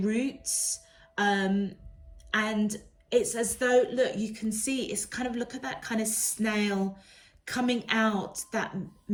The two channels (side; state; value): both; identical; correlation 1.00